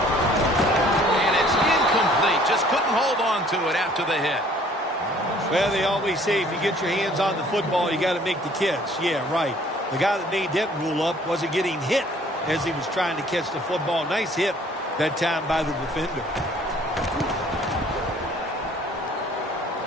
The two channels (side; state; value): both; normal; correlation 0.56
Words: it's incomplete. Just couldn't hold on to it after the hit. Well, they always say if you get your hands on the football, you got to make the catch. Yeah, right. The guy that made that rule up wasn't getting hit as he was trying to catch the football. Nice hit that time by the defender.